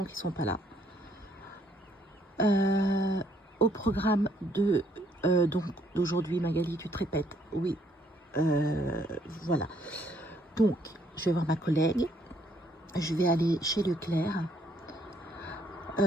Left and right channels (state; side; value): normal; both; correlation 0.68